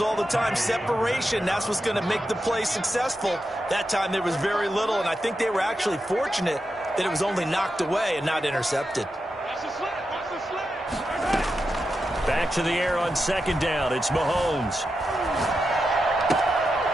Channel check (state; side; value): normal; both; correlation 0.88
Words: all the time. Separation, that's what's going to make the play successful. That time there was very little, and I think they were actually fortunate that it was only knocked away and not intercepted. Back to the air on second down. It's Mahomes.